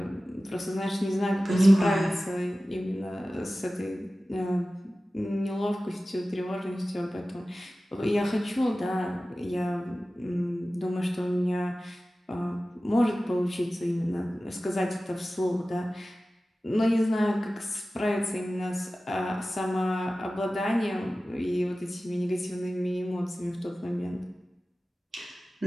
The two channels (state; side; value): normal; both; correlation 0.96